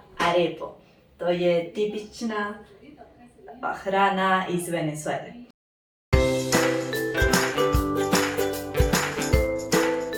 arepo. To je tipična hrana iz Venezuele.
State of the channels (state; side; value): identical; both; correlation 1.00